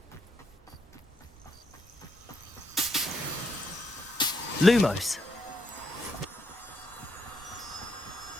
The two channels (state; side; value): normal; both; correlation 0.77